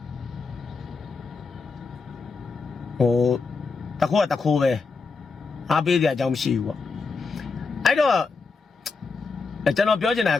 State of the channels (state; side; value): quieter; right; 4.5 dB